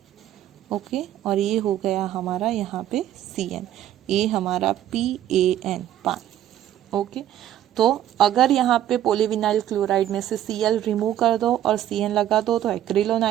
ओके, और ये हो गया हमारा यहाँ पे Cn, ये हमारा PAN, पान। ओके, तो अगर यहाँ पे पॉलीविनाइल क्लोराइड में से Cl रिमूव कर दो और Cn लगा दो तो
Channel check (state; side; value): quieter; left; 11.9 dB